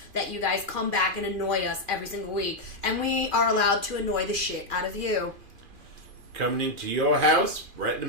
that you guys come back and annoy us every single week. And we are allowed to annoy the shit out of you. Coming into your house right in the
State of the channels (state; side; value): late; left; 2.4 ms